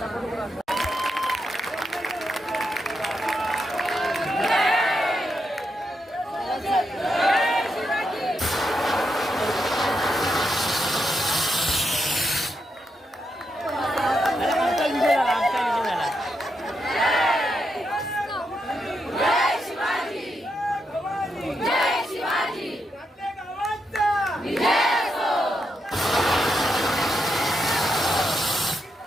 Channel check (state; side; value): normal; both; correlation 0.83